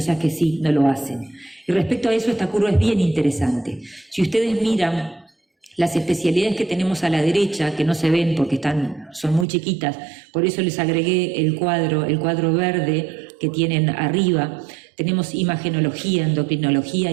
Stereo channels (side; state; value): left; drops out; at 9.5 s